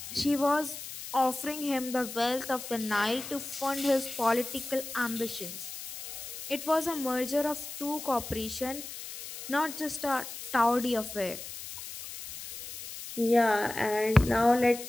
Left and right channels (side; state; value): left; noise; hiss, 10 dB below the sound